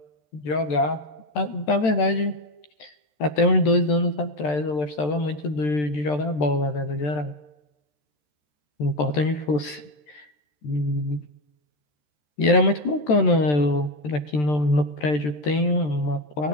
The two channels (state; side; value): late; right; 13 ms